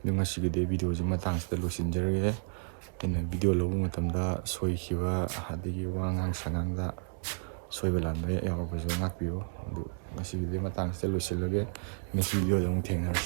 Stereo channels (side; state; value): left; silent; digital silence